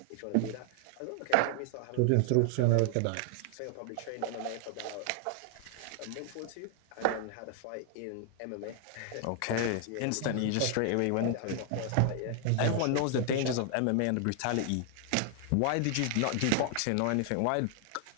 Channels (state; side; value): different; both; correlation 0.00